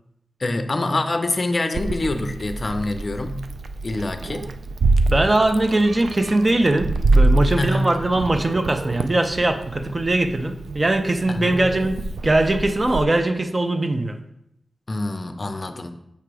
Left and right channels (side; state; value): both; normal; correlation 0.94